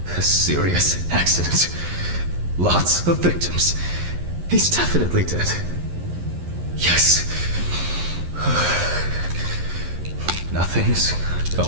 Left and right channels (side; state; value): left; late; 11 ms